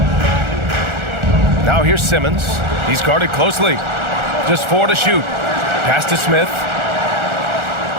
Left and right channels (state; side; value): late; left; 1.4 ms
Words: Now here's Simmons. He's guarded closely. Just 4 to shoot. Pass to Smith.